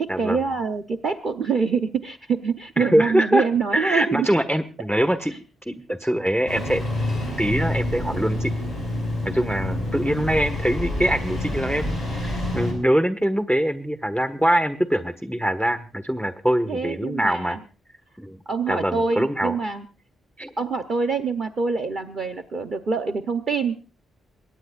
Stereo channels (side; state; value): both; normal; correlation 0.87